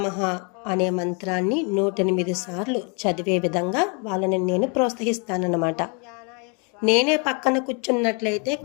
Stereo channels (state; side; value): quieter; right; 35.3 dB